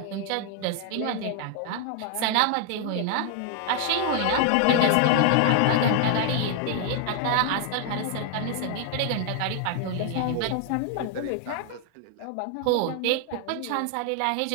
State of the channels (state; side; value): different; both; correlation 0.00